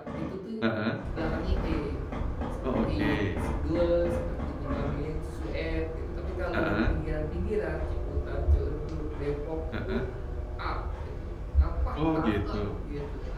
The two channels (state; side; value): identical; both; correlation 1.00